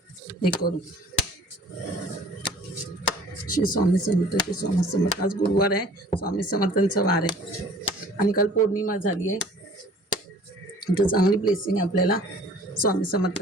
हे करू. श्री स्वामी समर्थ, श्री स्वामी समर्थ. आज गुरुवार आहे, स्वामी समर्थांचा वार आहे आणि काल पौर्णिमा झाली आहे. तर चांगली ब्लेसिंग आहे आपल्याला स्वामी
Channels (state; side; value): normal; both; correlation 0.50